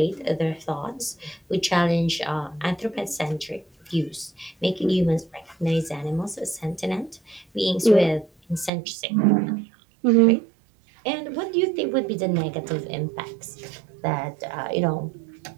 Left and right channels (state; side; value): drops out; left; at 8.7 s